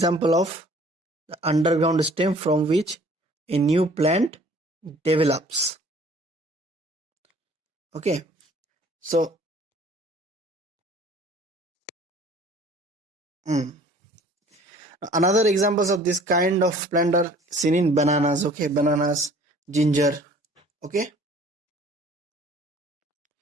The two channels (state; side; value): normal; both; correlation 0.52